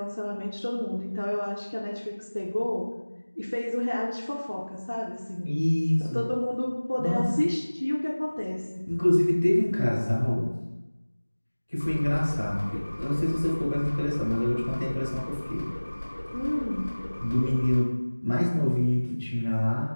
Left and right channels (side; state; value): both; inverted; correlation -1.00